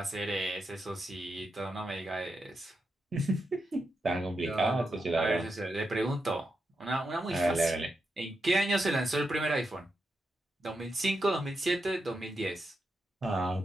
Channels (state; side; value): normal; both; correlation 0.86